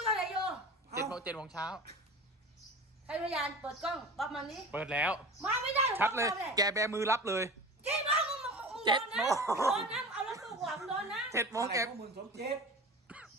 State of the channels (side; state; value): both; normal; correlation 0.35